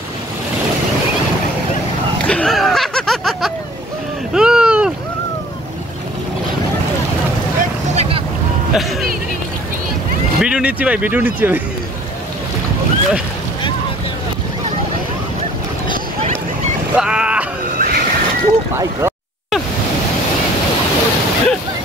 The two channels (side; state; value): both; normal; correlation 0.52